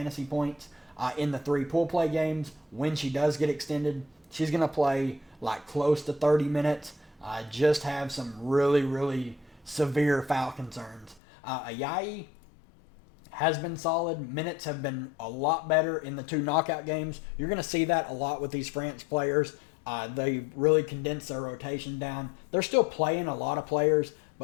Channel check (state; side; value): drops out; right; at 11.2 s